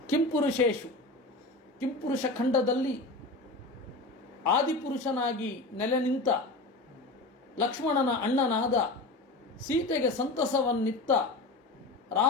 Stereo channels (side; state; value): right; quieter; 3.0 dB